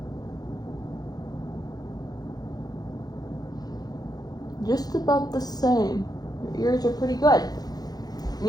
Just about the same. Your ears are pretty good. And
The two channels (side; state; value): right; late; 0.19 ms